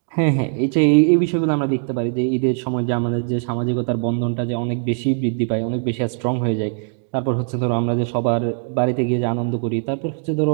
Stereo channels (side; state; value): left; silent; digital silence